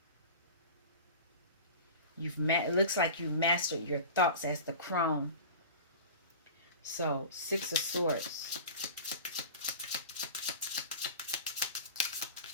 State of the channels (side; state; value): both; inverted; correlation -0.35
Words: It looks like you mastered your thoughts as the crone. So, Six of Swords.